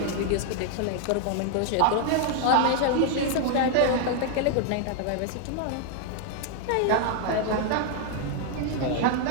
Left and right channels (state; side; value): different; both; correlation 0.00